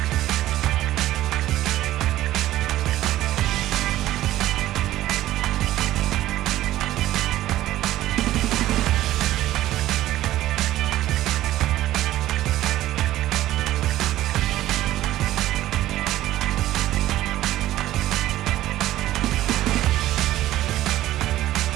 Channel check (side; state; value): left; quieter; 14.6 dB